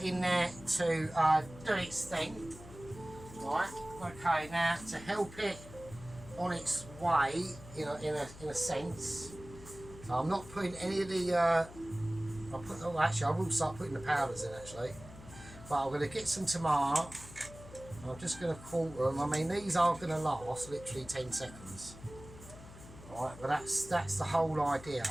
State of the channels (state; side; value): noise; left; hum, 17 dB below the sound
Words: in there to do its thing. Right. Okay. Now to help it on its way, in a sense. So I'm not putting any of the. Actually, I will start putting the powders in actually. But I'm going to get some tomato. I'm just going to quarter them. I mean, these are going to last literally 10 seconds. Right, but that's the whole idea,